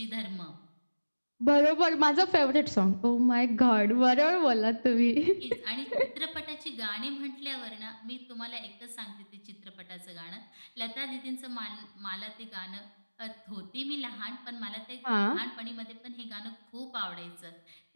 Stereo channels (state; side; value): inverted; both; correlation -1.00